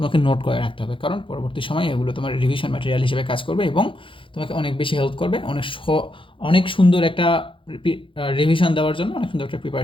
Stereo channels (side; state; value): right; late; 0.25 ms